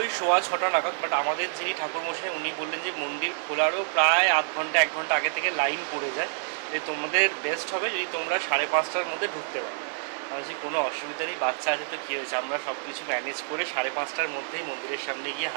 ওই 6:15 নাগাদ, বাট আমাদের যিনি ঠাকুরমশাই উনি বললেন যে মন্দির খোলারও প্রায় আধ ঘন্টা 1 ঘন্টা আগে থেকে লাইন পড়ে যায়, যে তোমাদের বেস্ট হবে যদি তোমরা 5:30টার মধ্যে ঢুকতে পারো। যে কোনো অসুবিধা নেই, বাচ্চা আছে তো কী হয়েছে, আমরা সব কিছু ম্যানেজ করে 5:30টার মধ্যেই মন্দিরের সামনে গিয়ে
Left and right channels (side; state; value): left; silent; digital silence